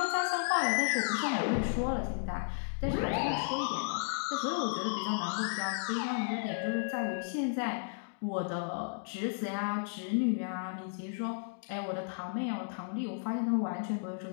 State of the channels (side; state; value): right; silent; digital silence